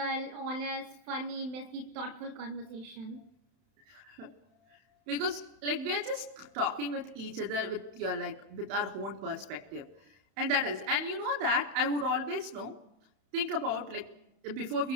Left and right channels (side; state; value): left; late; 31 ms